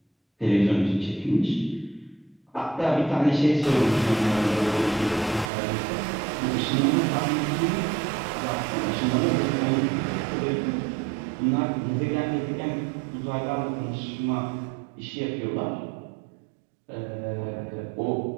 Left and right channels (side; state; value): left; drops out; at 5.5 s